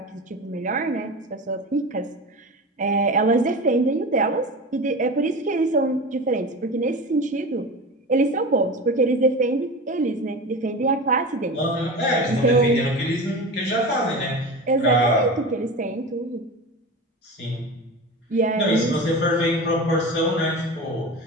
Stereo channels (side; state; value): both; normal; correlation 0.29